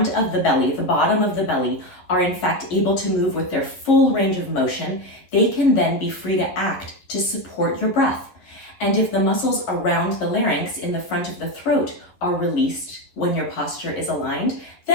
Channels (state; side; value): late; right; 11 ms